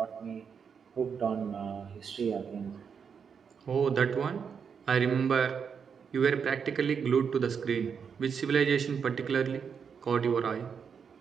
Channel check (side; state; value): left; quieter; 6.6 dB